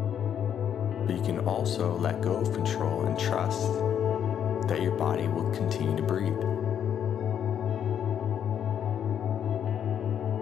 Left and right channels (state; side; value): quieter; right; 8.9 dB